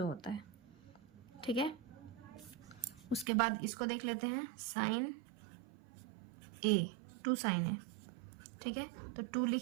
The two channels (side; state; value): left; drops out; at 3.2 s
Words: है, ठीक है। उसके बाद इसको देख लेते हैं, sin a 2 sin a, ठीक है। तो 2